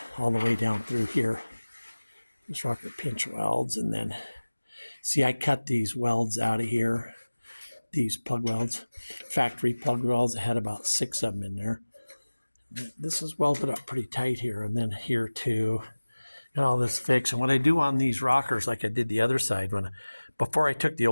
all the way down through here. This rocker pinch welds, and then see, I cut these welds out of here, these plug welds, factory plug welds. I had about 6 of them in there. This is welded up pretty tight here, and then here too, and all this fixed. And what I do on these rockers, like I did the other side, before I took the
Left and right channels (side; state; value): both; inverted; correlation -1.00